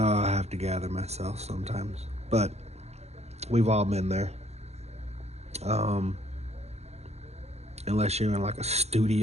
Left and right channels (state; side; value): late; left; 0.31 ms